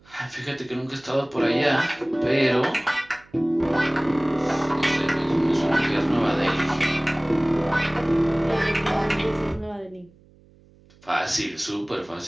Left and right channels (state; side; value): noise; right; hum, 28 dB below the sound